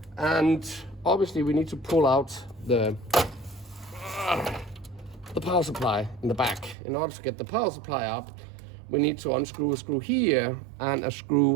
And obviously we need to pull out the power supply in the back. In order to get the power supply up, we need to unscrew a screw here and a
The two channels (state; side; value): drops out; left; at 6.8 s